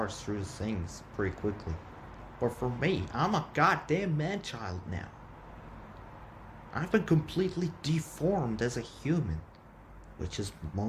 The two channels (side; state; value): both; identical; correlation 1.00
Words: through things pretty quickly. But for me, I'm a goddamn man-child now. I've been completely deformed as a human, which is